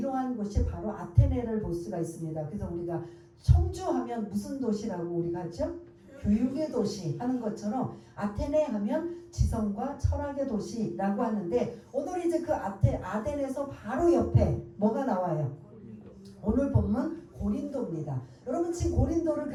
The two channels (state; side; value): identical; both; correlation 1.00